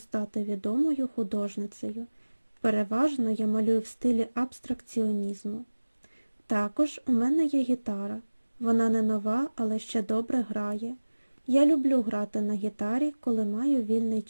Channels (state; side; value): inverted; both; correlation -1.00